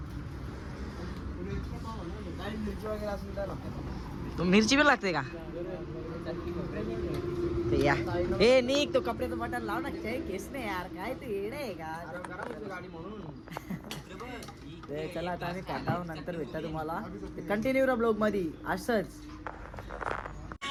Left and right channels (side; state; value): both; identical; correlation 1.00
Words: तो मिरची पण लागते का ते या. ए निक तो कपड्याचं बटन लाव ना केस नाही यार काय ते येडे आहे का. ते चला आता आम्ही काटाव नंतर भेटता तुम्हाला कंटिन्यू रा ब्लॉग मध्ये असंच.